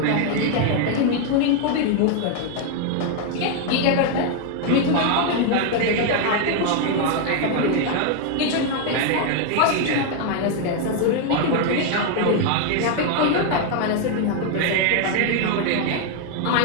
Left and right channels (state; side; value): different; both; correlation 0.00